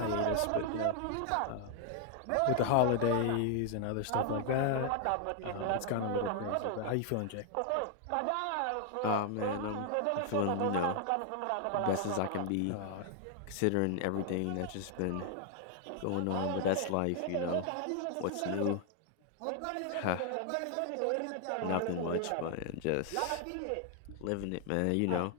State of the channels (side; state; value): both; different; correlation 0.00